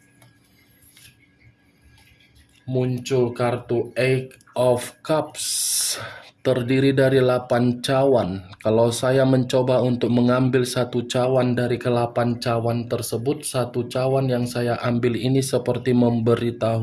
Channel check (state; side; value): identical; both; correlation 1.00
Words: Muncul kartu Eight of Cups, terdiri dari 8 cawan. Kalau saya mencoba untuk mengambil 1 cawan dari ke-8 cawan tersebut, 1 cawan yang saya ambil ini seperti